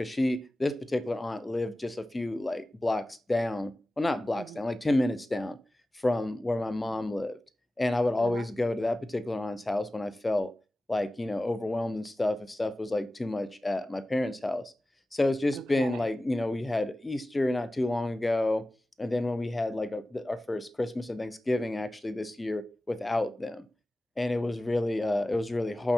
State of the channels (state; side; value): normal; both; correlation 0.96